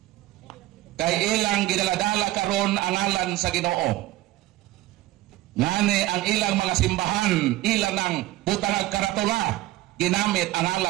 Kay ilang gidaladala karon ang ngalan sa Ginoo. Ngani ang ilang mga simbahan, ilang ng butangag karatula, ginamit ang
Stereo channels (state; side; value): quieter; left; 16.8 dB